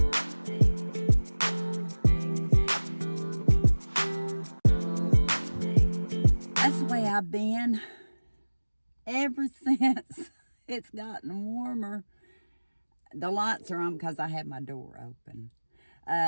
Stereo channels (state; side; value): inverted; both; correlation -1.00